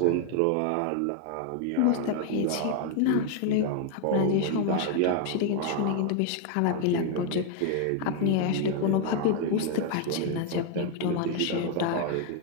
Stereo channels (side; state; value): both; different; correlation 0.00